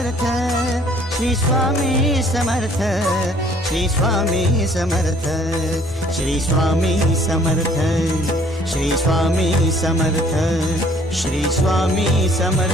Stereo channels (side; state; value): both; normal; correlation 0.58